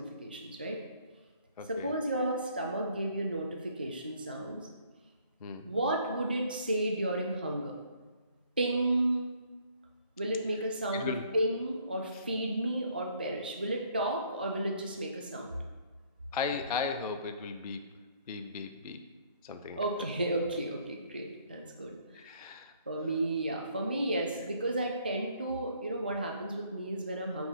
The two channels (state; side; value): inverted; both; correlation -0.63